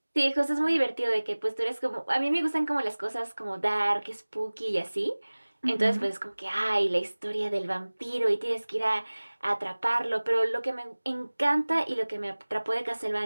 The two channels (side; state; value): both; inverted; correlation -1.00